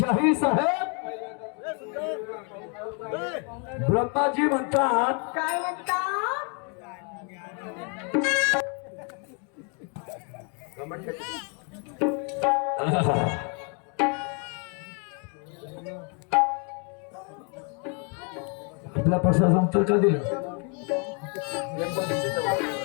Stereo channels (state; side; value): quieter; right; 37.2 dB